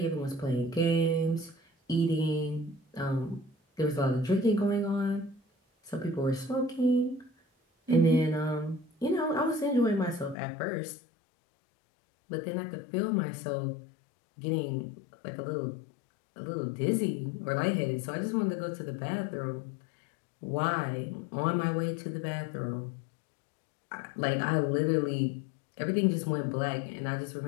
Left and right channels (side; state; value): right; drops out; at 10.4 s